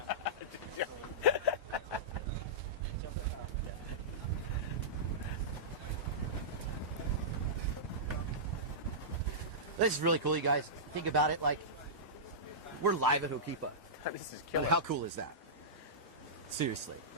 This is really cool, you guys. Think about it, like, we're live at Hokipa. This is killer. How cool is that? Seriously.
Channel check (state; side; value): normal; both; correlation -0.16